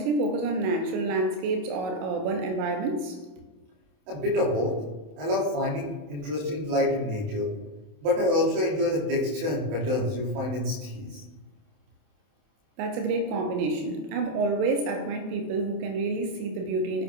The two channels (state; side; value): late; left; 27 ms